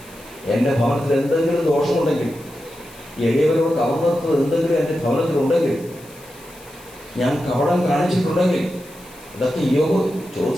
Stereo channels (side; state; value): left; noise; hiss, 22 dB below the sound